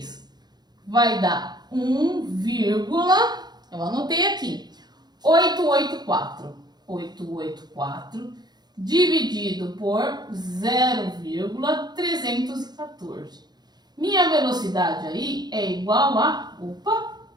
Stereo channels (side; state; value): left; late; 0.20 ms